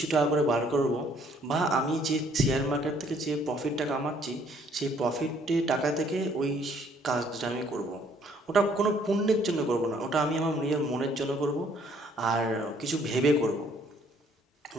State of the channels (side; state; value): both; normal; correlation 0.63